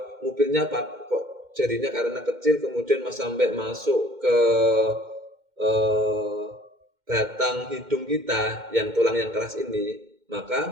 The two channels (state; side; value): late; left; 2.1 ms